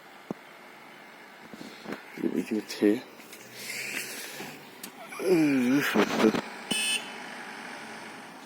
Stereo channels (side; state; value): both; identical; correlation 1.00